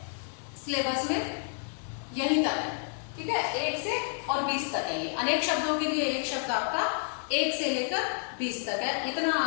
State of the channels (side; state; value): right; silent; 58 dB below the other